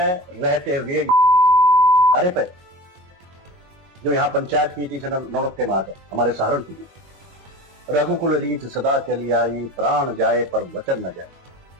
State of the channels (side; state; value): left; late; 22 ms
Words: रहते हुए अरे पे जो यहाँ पंचायत नीति से नौड़ते मार है हमारे सहारनपुर की, रघुकुल रीत सदा चली आई, प्राण जाए पर वचन न जाए।